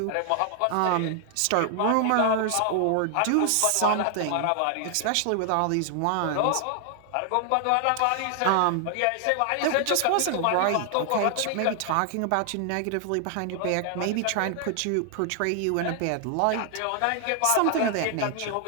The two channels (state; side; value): different; both; correlation 0.00